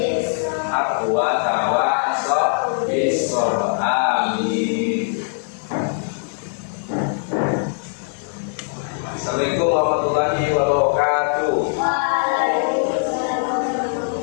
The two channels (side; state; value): right; silent; 65 dB below the other